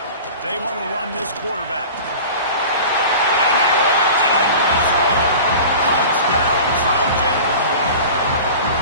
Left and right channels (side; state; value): both; inverted; correlation -0.37